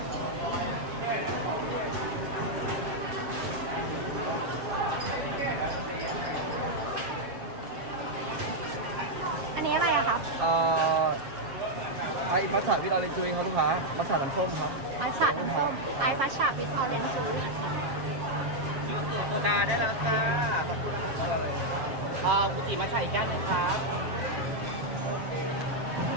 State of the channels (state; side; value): late; left; 7.3 ms